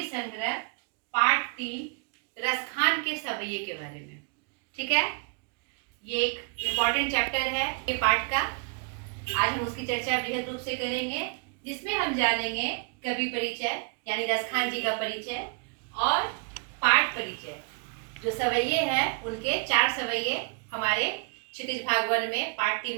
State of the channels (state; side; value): quieter; left; 36.9 dB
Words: संग्रह पाठ 3 रसखान के सवैये के बारे में। ठीक है, ये एक इम्पॉर्टेंट चैप्टर है ये पाठ का। आज हम उसकी चर्चा बृहद रूप से करेंगे, जिसमें हम जानेंगे कवि परिचय यानी रसखान जी का परिचय और पाठ परिचय। जो सवैये हैं उनके 4 सवैये हमारे क्षितिज भाग 1 में पाठ